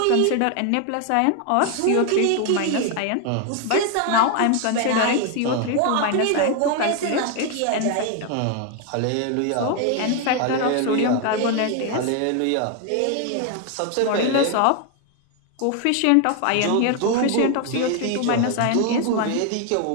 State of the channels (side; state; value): both; different; correlation 0.01